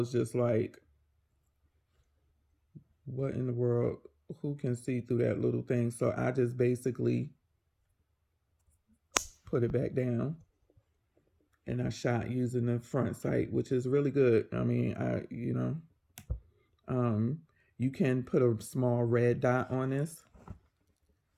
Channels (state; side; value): identical; both; correlation 1.00